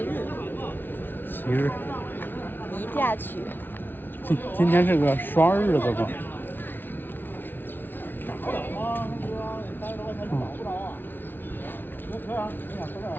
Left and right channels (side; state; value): right; late; 0.096 ms